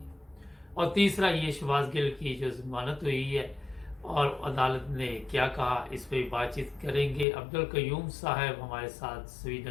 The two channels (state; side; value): drops out; right; at 7.2 s